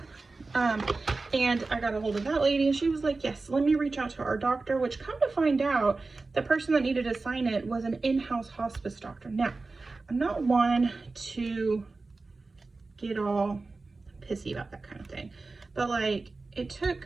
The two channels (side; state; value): left; quieter; 3.7 dB